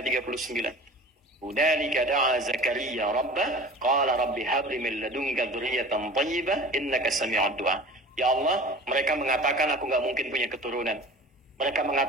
Hudzalika da'a Zakaria rabbah qala rabbi hab li min ladunka dzurriyyatan thayyibah innaka sami'ud du'a. Ya Allah, mereka mengatakan aku nggak mungkin punya keturunan. Mereka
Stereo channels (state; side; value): normal; both; correlation 0.40